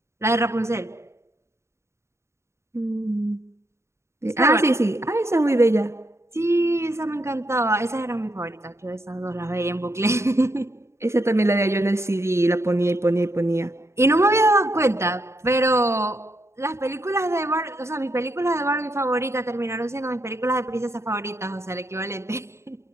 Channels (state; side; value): late; left; 0.13 ms